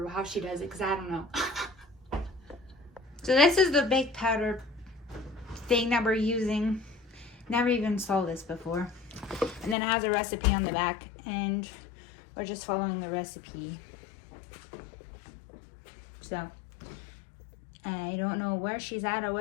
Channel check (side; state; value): right; drops out; at 9.8 s